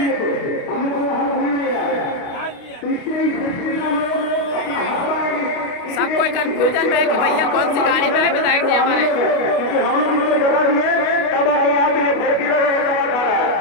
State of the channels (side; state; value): right; late; 29 ms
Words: सब कोई कंफ्यूजन में है कि भैया कौन सी गाड़ी में है विधायक जी हमारे।